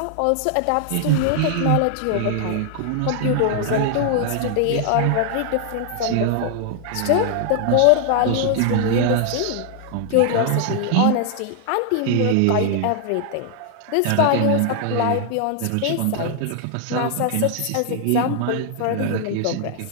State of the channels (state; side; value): different; both; correlation 0.00